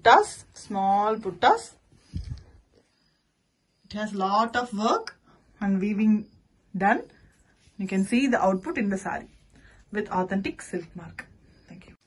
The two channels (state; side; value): identical; both; correlation 1.00